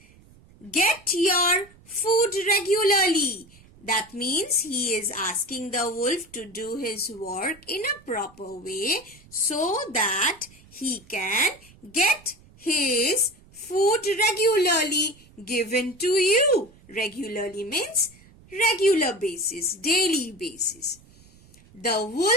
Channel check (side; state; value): right; noise; rumble, 26 dB below the sound